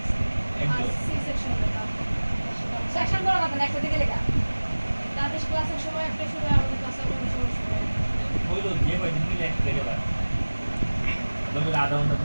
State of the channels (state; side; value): inverted; both; correlation -1.00